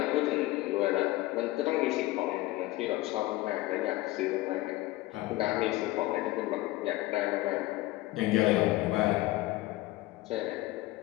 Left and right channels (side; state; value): right; quieter; 18.0 dB